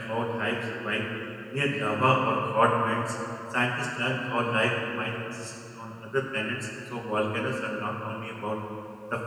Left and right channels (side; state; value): both; identical; correlation 1.00